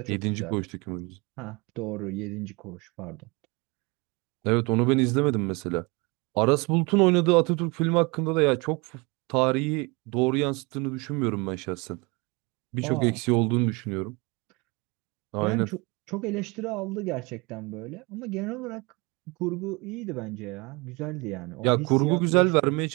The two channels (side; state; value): left; quieter; 27.4 dB